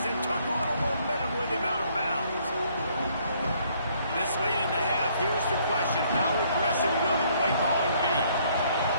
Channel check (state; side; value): inverted; both; correlation -0.65